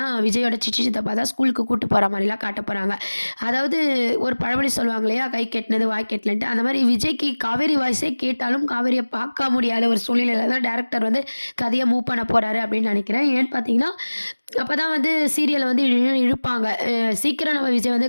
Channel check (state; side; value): inverted; both; correlation -1.00